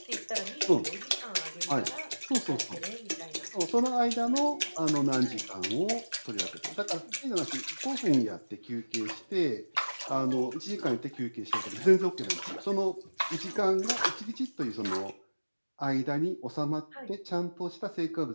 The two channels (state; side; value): inverted; both; correlation -1.00